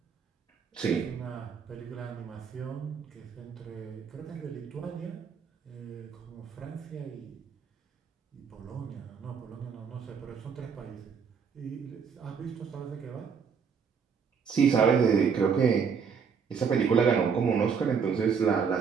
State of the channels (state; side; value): quieter; left; 6.3 dB